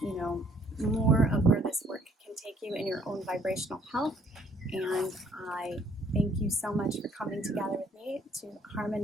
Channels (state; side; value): normal; both; correlation 0.62